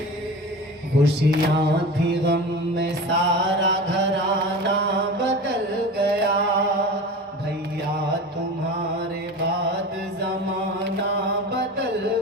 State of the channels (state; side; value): normal; both; correlation 0.32